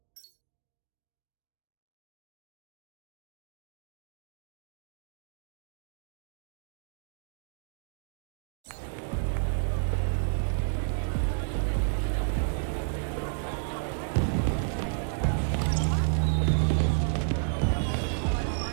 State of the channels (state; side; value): silent; left; digital silence